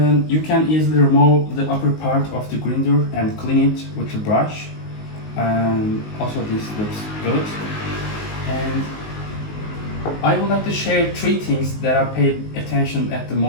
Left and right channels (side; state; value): right; late; 19 ms